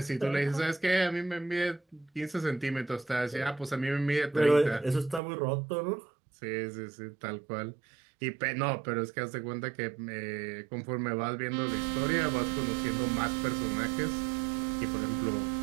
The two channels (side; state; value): left; drops out; at 5.2 s